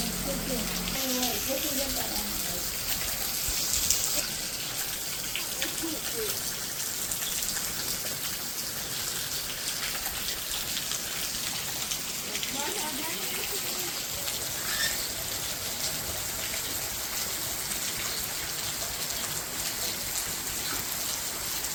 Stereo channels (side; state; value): both; identical; correlation 1.00